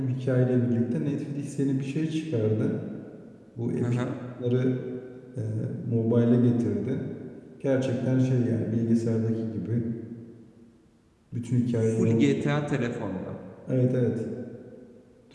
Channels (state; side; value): identical; both; correlation 1.00